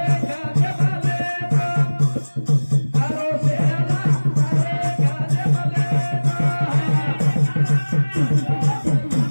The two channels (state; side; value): inverted; both; correlation -1.00